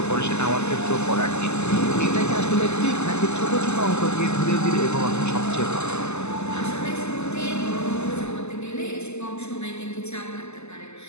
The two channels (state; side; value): late; right; 0.81 ms